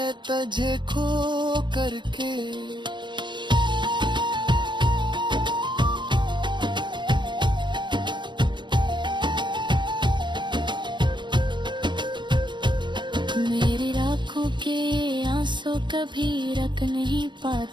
तुझे खो करके। मेरी आँखों के आंसू कभी रख रोक नहीं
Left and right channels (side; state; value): left; late; 0.22 ms